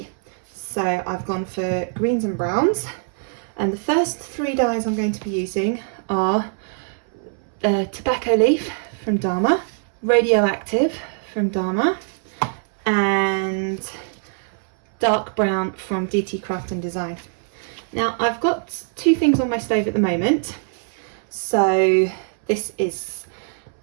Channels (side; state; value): left; silent; 64 dB below the other